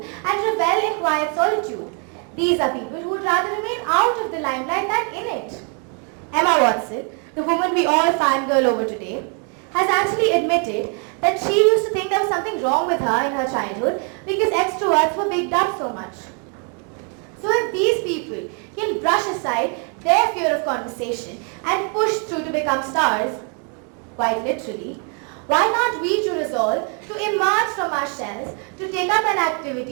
and revel in quiet solitude. These are people who would rather remain out of the limelight than in it. Emma Watson, the woman we all fangirl over today, has actually admitted that she used to think there was something wrong with her in her childhood because extroverts were bigged up so much. So if these people can brush aside their fear of conversation and push through to become stars, quite literally, why not we to resolve to emerge from our shells, to take up an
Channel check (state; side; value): quieter; left; 39.0 dB